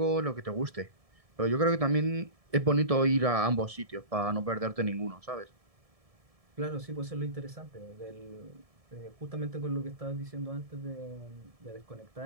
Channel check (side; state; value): left; late; 1.7 ms